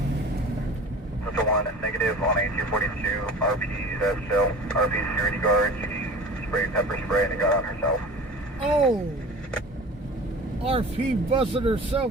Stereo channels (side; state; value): both; normal; correlation 0.39